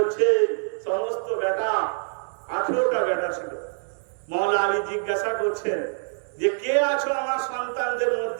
সমস্ত বেটা, ১৮টা বেটা ছিল, মাওলা আলী জিজ্ঞাসা করছেন যে কে আছো আমার সন্তানদের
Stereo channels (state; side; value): silent; left; digital silence